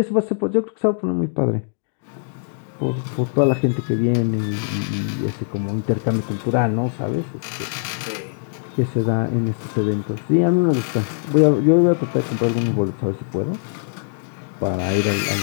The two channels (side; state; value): right; silent; digital silence